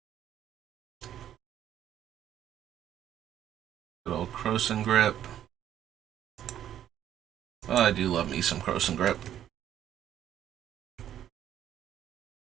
Good old Croson Grip. Oh, I do love me some Croson Grip.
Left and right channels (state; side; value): quieter; left; 10.8 dB